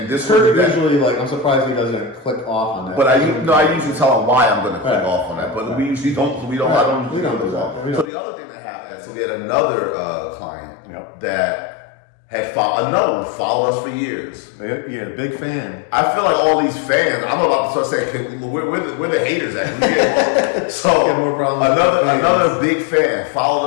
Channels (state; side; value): drops out; right; at 8.1 s